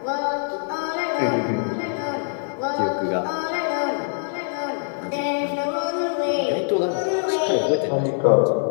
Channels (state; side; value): silent; right; digital silence